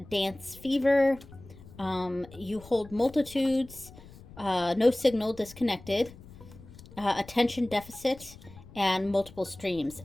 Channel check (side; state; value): left; noise; rumble, 19 dB below the sound